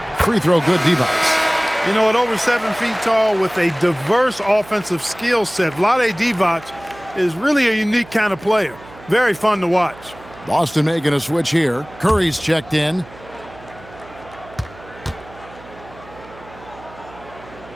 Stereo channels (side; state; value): right; noise; hum, 20 dB below the sound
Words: Free throw good, Divac. You know, at over 7 feet tall with a diverse offensive skill set, Vlade Divac is really a unique kind of player. Very fun to watch. Boston making a switch here. Curry's checked in.